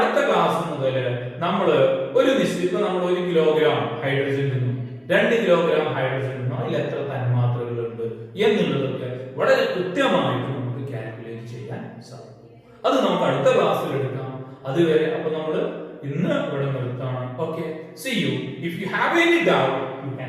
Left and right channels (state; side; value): identical; both; correlation 1.00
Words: ക്ലാസ് മുതൽ നമ്മൾ ഒരു നിശ്ചിത നമ്മൾ 1 കിലോഗ്രാം ഹൈഡ്രജൻ നിന്നും 2 കിലോഗ്രാം ഹൈഡ്രജൻ നിന്നും അതിൽ എത്ര തന്മാത്രകൾ ഉണ്ട് എന്നുള്ളതൊക്കെ വളരെ കൃത്യമായിട്ട് നമുക്ക് കാൽക്കുലേറ്റ് ചെയ്യാൻ സാധിക്കും. അത് നമുക്ക് അടുത്ത ക്ലാസ്സിൽ എടുക്കാം. അതുവരെ അപ്പൊ നമ്മൾ ഇന്ന് ഇവിടെ നിർത്താണ്. Okay, see you. If you have any doubt, you